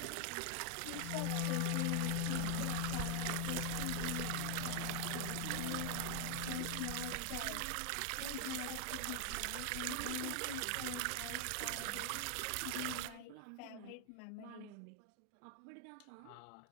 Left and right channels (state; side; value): different; both; correlation 0.00